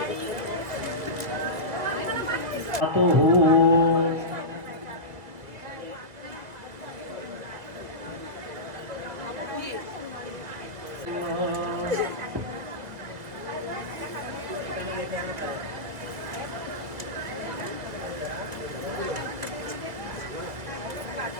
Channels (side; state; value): left; late; 2.1 ms